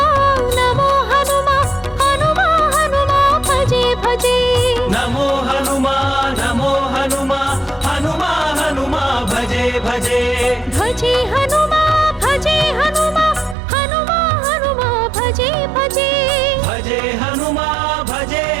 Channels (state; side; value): drops out; left; at 13.6 s